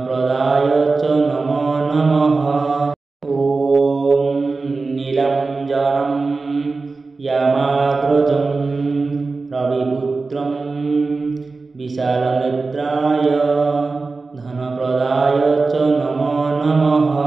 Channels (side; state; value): left; quieter; 3.9 dB